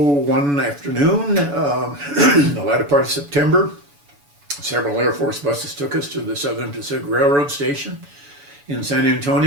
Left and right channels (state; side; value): late; left; 7.0 ms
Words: one afternoon, the latter part of September, several Air Force buses took us to the Southern Pacific Railroad station in San